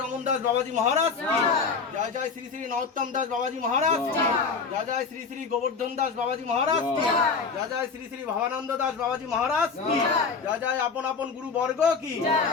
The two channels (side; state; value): right; quieter; 5.0 dB